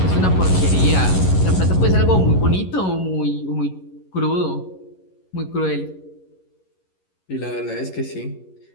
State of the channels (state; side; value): late; right; 11 ms